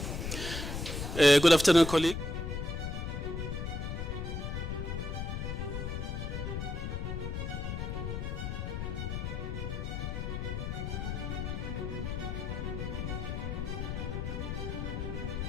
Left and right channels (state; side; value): noise; left; rumble, 3 dB below the sound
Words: Good afternoon, colleague.